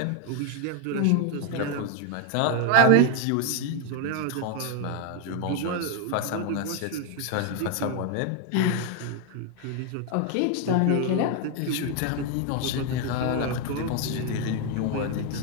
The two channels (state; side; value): different; both; correlation 0.01